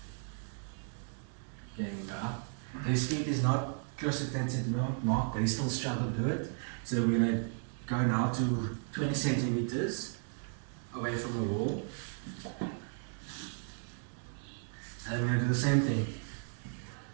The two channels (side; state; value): left; silent; 55 dB below the other